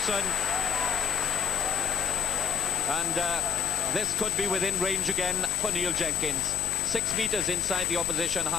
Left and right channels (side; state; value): right; quieter; 6.8 dB